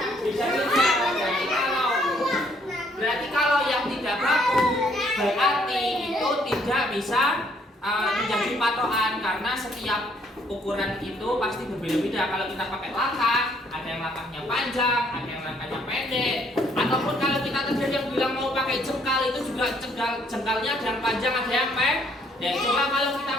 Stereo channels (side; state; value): both; normal; correlation 0.66